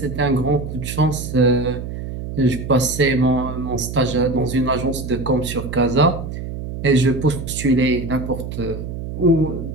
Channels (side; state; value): right; noise; hum, 7 dB below the sound